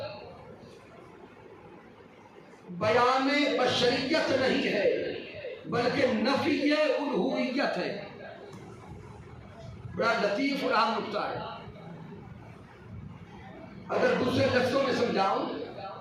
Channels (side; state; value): both; identical; correlation 1.00